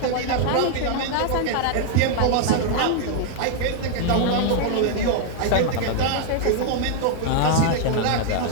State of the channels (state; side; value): different; both; correlation 0.00